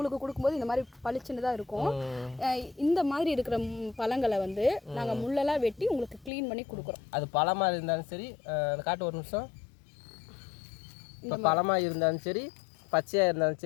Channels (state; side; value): drops out; right; at 6.3 s